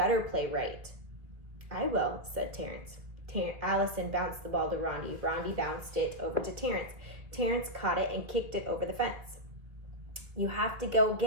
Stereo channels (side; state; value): left; late; 1.9 ms